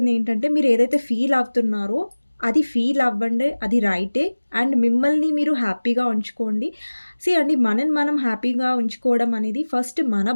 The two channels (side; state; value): both; inverted; correlation -1.00